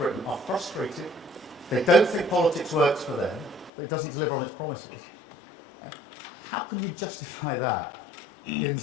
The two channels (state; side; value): drops out; right; at 3.7 s